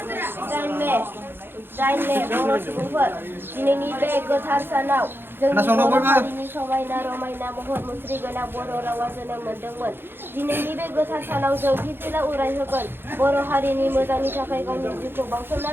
Jainle बर' सुबुंफोर दिनैनि बे गोथार सानाव जोंनि बर' हारिनि समायना रमायना महर मुस्रि गोनां बर' रावा जोनोम मोनदोंमोन। दिनैनि बे गोथार सानाव जों फिरफिला उरायहोगोन बर' हारिनि मोजांनि थाखाय गावनि जिउखौ बाउसोमना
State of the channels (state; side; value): late; left; 0.10 ms